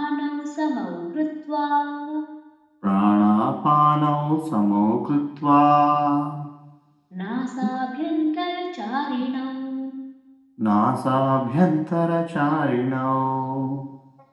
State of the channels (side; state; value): both; identical; correlation 1.00